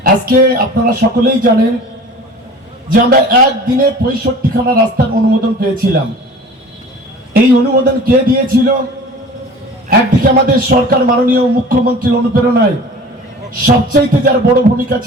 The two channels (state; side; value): normal; both; correlation 0.42